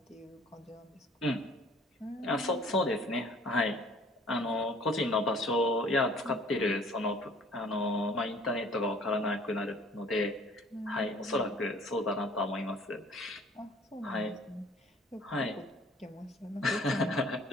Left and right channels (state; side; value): normal; both; correlation 0.53